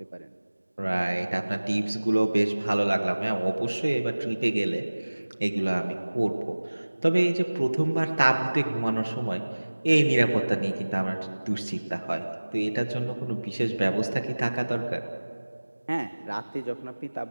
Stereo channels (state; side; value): inverted; both; correlation -1.00